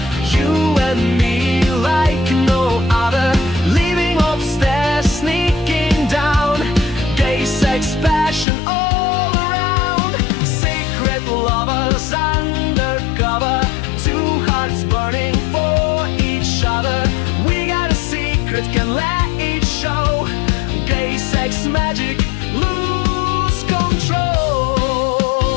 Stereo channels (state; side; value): drops out; right; at 8.5 s